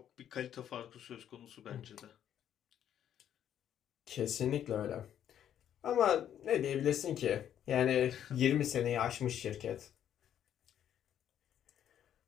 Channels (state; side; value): quieter; right; 10.1 dB